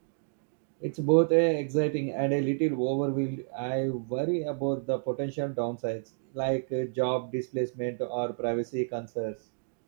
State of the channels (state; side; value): silent; left; digital silence